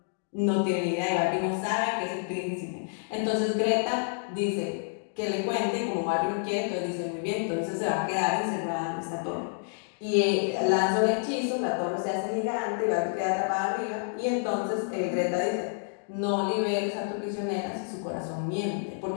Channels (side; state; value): right; silent; digital silence